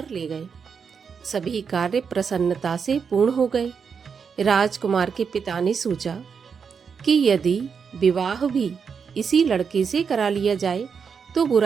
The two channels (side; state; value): left; quieter; 6.2 dB